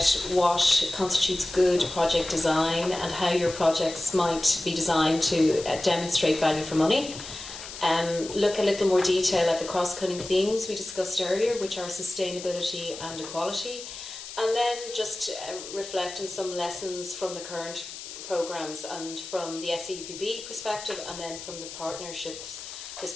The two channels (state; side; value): noise; left; hiss, 11 dB below the sound